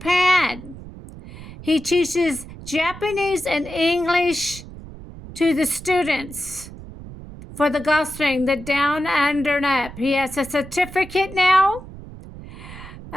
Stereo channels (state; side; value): noise; right; rumble, 15 dB below the sound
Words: He teaches Japanese and English to the students for the golf swing, the down, under, and up. He has a certificate now.